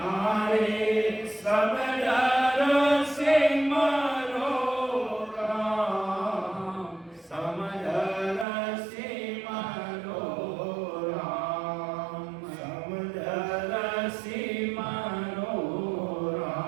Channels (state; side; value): drops out; left; at 8.5 s